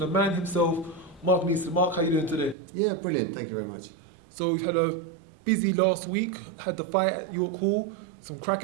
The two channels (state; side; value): drops out; left; at 2.6 s